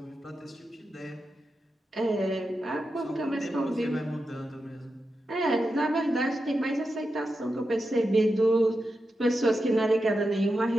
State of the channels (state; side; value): normal; both; correlation 0.89